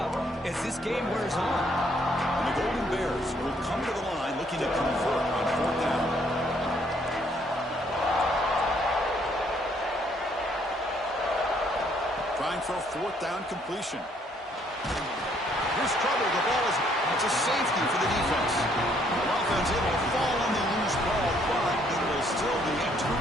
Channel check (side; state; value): both; normal; correlation 0.67